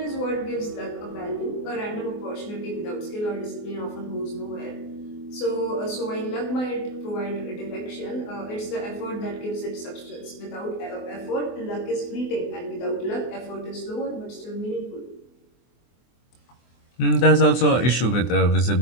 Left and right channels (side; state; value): right; late; 24 ms